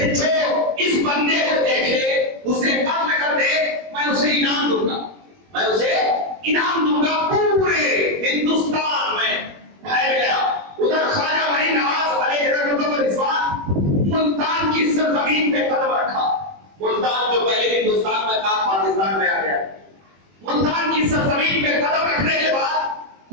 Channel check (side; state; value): left; late; 21 ms